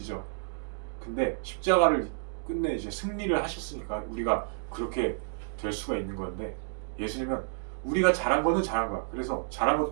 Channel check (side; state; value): left; silent; digital silence